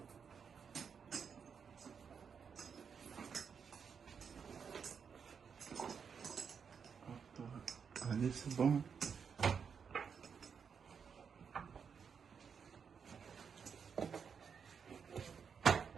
Allez, c'est bon.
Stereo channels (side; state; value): left; quieter; 6.5 dB